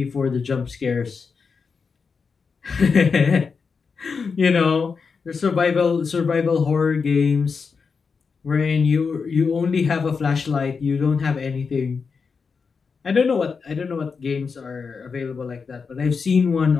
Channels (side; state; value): right; quieter; 5.3 dB